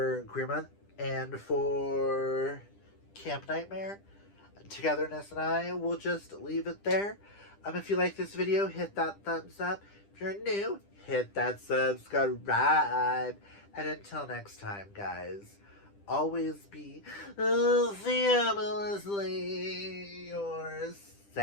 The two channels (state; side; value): late; right; 10 ms